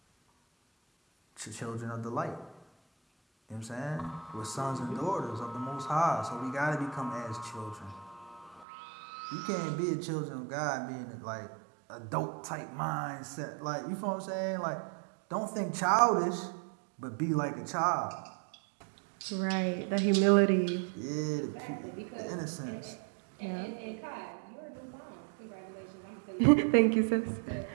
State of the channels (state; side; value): drops out; left; at 8.7 s